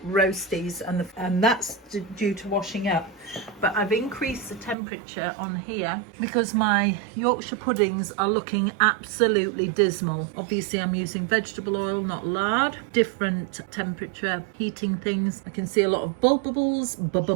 roasties, and that's due to washing up. But I've increased the temperature on here because my Yorkshire puddings are looking absolutely dismal. Obviously I'm using vegetable oil, not lard. Different temperature heating things. I can see a lot of bubbles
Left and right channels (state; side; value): drops out; left; at 4.8 s